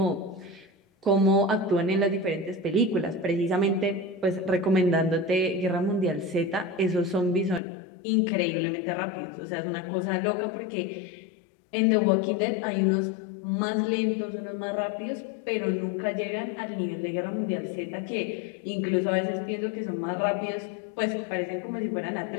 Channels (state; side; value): drops out; right; at 7.6 s